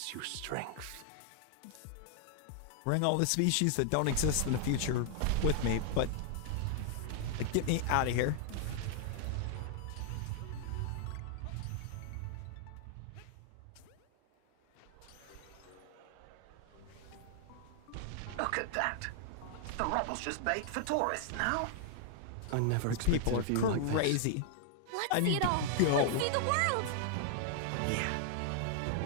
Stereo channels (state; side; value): different; both; correlation 0.00